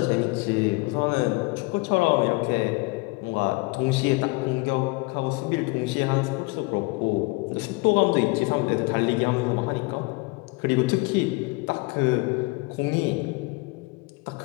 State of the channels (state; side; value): quieter; right; 25.3 dB